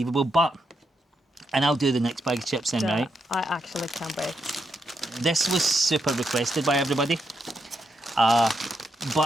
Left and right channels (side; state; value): both; normal; correlation 0.81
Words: But, and I'll do the next bag of chips then, Yeah, right? I actually can't wait. This was super requested by everybody.